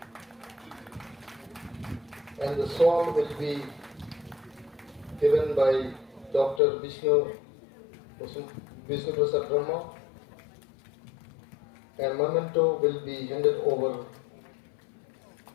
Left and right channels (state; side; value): drops out; right; at 6.6 s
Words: And the shawl will be given by Dr. Vishnu Prasad Brahma, and memento will be handed over